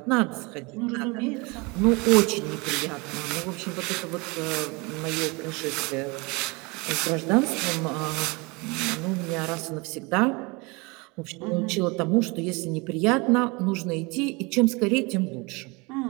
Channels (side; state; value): left; quieter; 27.1 dB